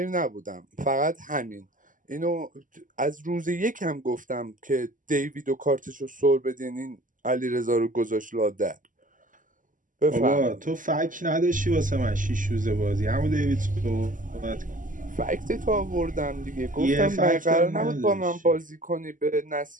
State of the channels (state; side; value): late; left; 0.38 ms